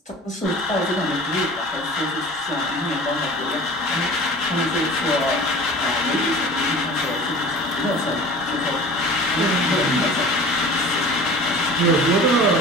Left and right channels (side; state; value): both; normal; correlation 0.41